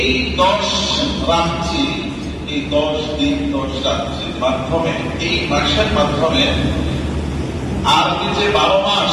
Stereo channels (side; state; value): both; identical; correlation 1.00